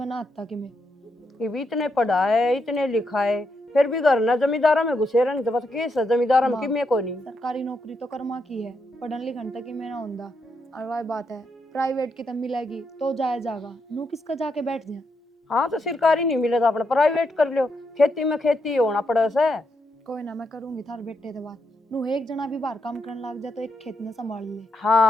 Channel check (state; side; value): normal; both; correlation 0.81